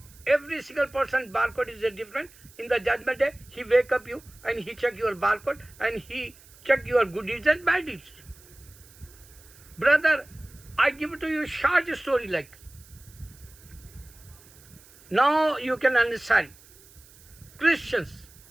Every single person barcode is different. In the judgment day, he wake up you and he check your barcode and he check your good deeds and bad deeds. Brother, I give it to you short story like. Now you can understand. Christians,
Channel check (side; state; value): right; noise; hiss, 24 dB below the sound